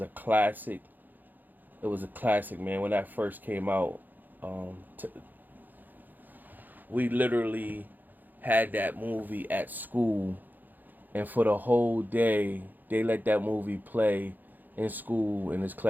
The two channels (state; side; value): late; left; 0.086 ms